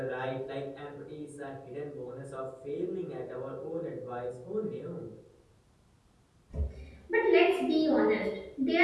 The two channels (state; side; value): identical; both; correlation 1.00